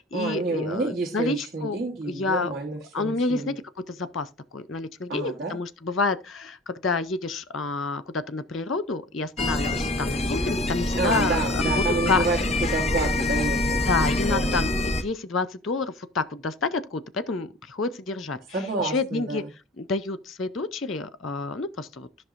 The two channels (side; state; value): both; normal; correlation 0.42